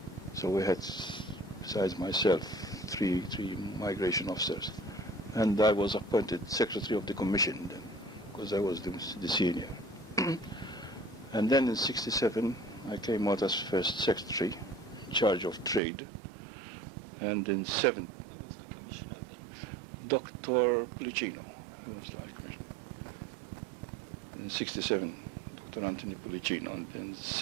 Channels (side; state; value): left; drops out; at 15.8 s